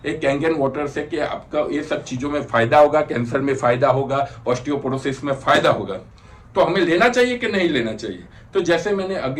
एक कैंगन वाटर से कि आपका ये सब चीजों में फायदा होगा, कैंसर में फायदा होगा, ऑस्टियोपोरोसिस में फायदा होगा। तो हमें लेना चाहिए कि नहीं लेना चाहिए? तो जैसे मैंने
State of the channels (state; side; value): identical; both; correlation 1.00